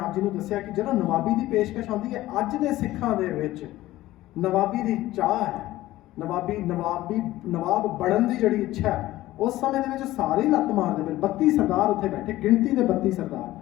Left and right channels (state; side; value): quieter; right; 16.2 dB